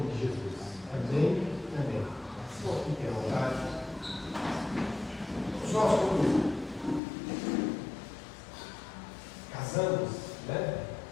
de Jesus. Amém. Amém. Senhor, fique à vontade. Nós, quando casamos, né?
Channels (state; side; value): drops out; right; at 7.0 s